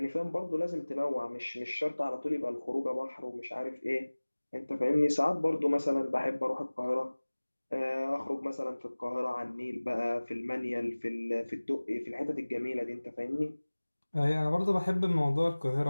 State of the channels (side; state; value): both; inverted; correlation -1.00